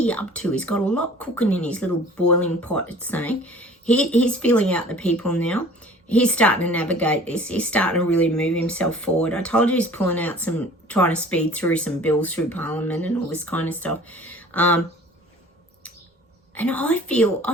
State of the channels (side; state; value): both; normal; correlation 0.48